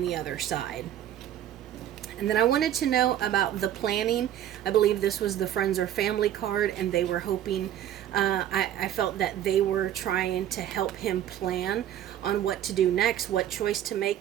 the other side. And then I wanted to know about the planning. I believe this was the friends or family card, and they were hoping, I felt that they were trying to help him plan on what to do next, what choice to make,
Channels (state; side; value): quieter; left; 11.2 dB